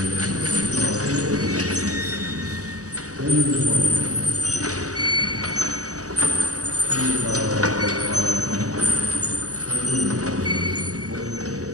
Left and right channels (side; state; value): left; late; 0.66 ms